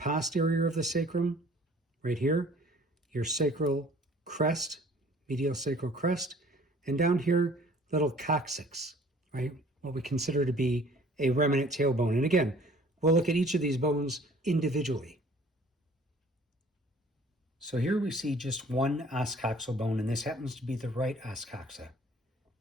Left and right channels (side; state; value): both; normal; correlation 0.52